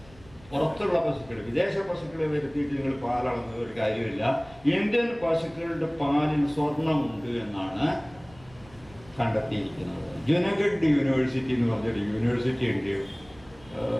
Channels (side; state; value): right; noise; rumble, 24 dB below the sound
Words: പുറത്തുള്ള പശുക്കൾ, വിദേശ പശുക്കളെ വരുത്തിയിട്ട് നിങ്ങൾ പാലളന്നത് ഒരു കാര്യമില്ല. ഇന്ത്യൻ പശുക്കളുടെ പാലിൽ സ്വർണ്ണമുണ്ട് എന്നാണ് കണ്ടെത്തിയിരിക്കുന്നത്. ജുനഗഡ് യൂണിവേഴ്സിറ്റി എന്ന് പറഞ്ഞൊരു യൂണിവേഴ്സിറ്റി ഉണ്ട്